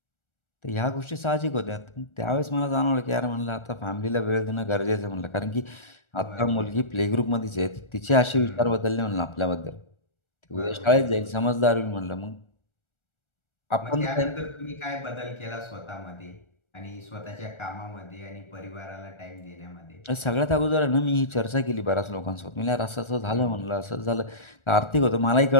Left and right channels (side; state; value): right; late; 1.4 ms